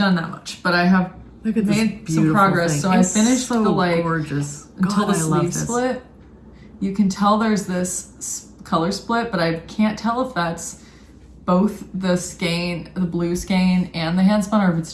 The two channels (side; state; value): both; identical; correlation 1.00